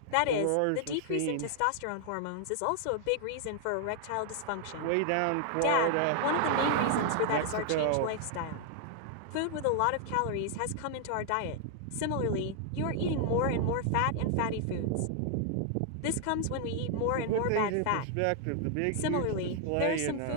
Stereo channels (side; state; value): both; different; correlation 0.00